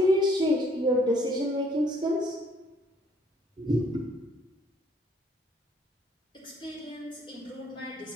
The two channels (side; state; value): both; normal; correlation 0.63